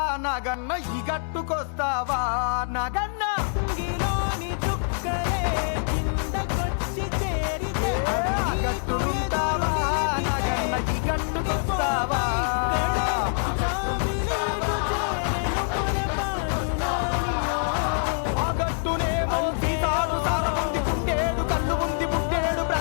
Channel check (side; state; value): right; silent; digital silence